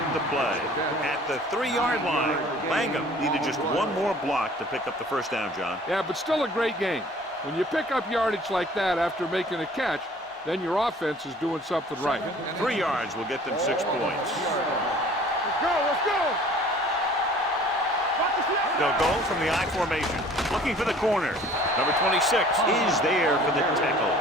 the play at the 3-yard line. Langham needed just one more block to pick up the 1st down, John. Yeah, but still a great game. When you pick up yardage like that after making a catch, then your offense is doing something right. 3 yards will get them 6 points. Let's go. They'll go from the I formation, looking for the corner. Number 26 is there for the tackle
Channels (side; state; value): both; normal; correlation 0.51